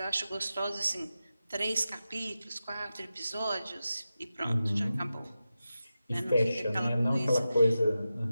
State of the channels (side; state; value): both; inverted; correlation -0.92